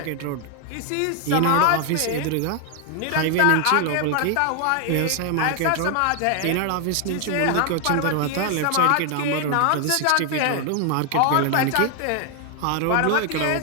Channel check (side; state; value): both; different; correlation 0.00